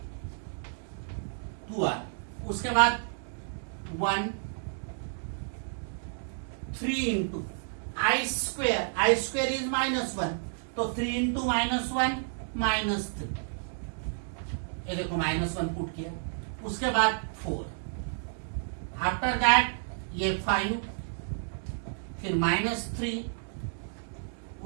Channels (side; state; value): left; silent; digital silence